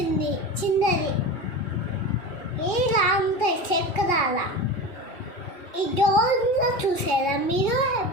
ఇలా ఉంటాయి చక్రాల. ఈ డోర్లో చూసారా మీరు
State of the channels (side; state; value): right; late; 2.8 ms